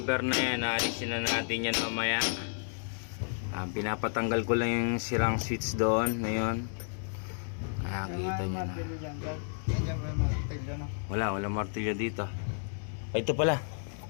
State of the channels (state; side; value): silent; right; digital silence